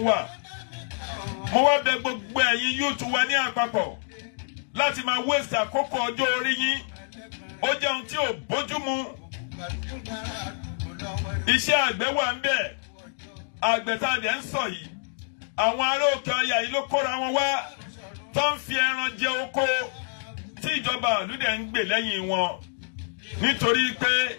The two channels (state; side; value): silent; right; digital silence